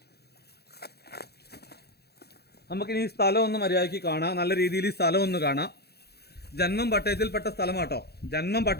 നമുക്കിനി ഈ സ്ഥലം ഒന്ന് മര്യാദയ്ക്ക് കാണാം. നല്ല രീതിയിൽ ഈ സ്ഥലം ഒന്ന് കാണാം. ജന്മം പട്ടയത്തിൽപ്പെട്ട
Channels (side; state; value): right; late; 0.47 ms